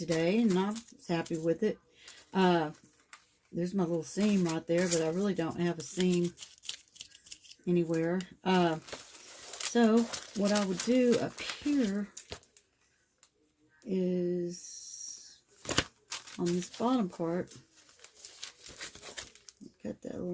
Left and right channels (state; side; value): identical; both; correlation 1.00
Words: and I was happy with it. There's my little seam right there, but I really don't have a seam anywhere. So what I would do up here is on this bottom part, cut that a